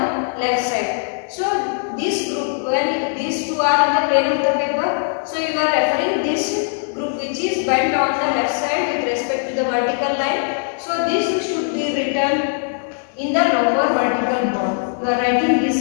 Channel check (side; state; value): right; silent; 63 dB below the other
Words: left side. So this group, when these two are in the plane of the paper, so you are referring this group which is bent on the left side with respect to the vertical line. So this should be written lower vertical bond. You are writing this